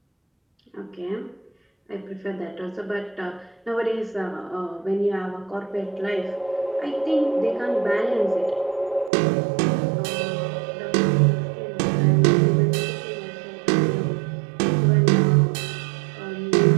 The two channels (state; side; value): drops out; left; at 9.1 s